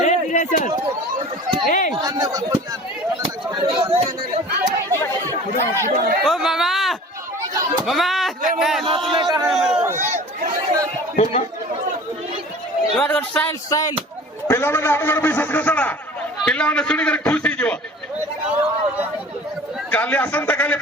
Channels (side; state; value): both; normal; correlation 0.43